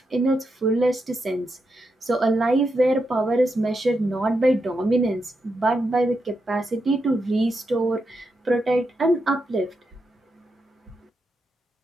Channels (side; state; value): both; normal; correlation 0.85